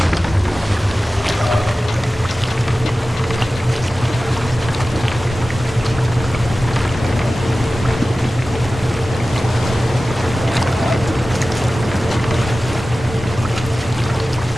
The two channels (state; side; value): normal; both; correlation 0.95